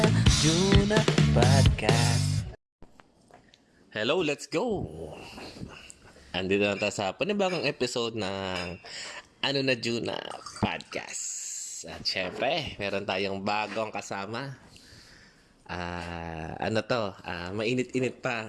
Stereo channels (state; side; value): identical; both; correlation 1.00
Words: Juna Podcast. Hello, let's go! Andito na tayo sa panibagong episode ng Juna Podcast. At syempre, meron tayong bagong kasama. Mainit-init